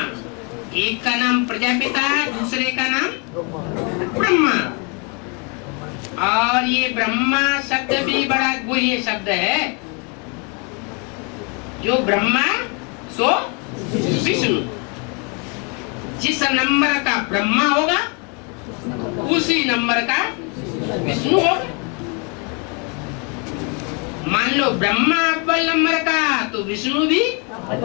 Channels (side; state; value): right; quieter; 34.4 dB